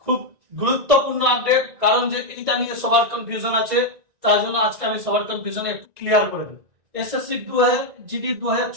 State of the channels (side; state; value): left; late; 1.9 ms